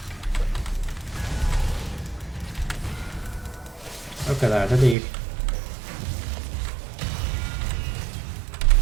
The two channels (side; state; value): left; drops out; at 5.0 s